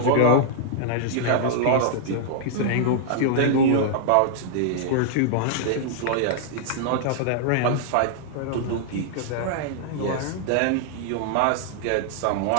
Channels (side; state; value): both; different; correlation -0.01